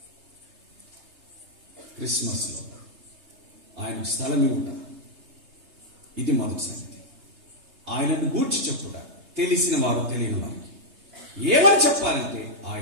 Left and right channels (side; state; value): left; late; 3.3 ms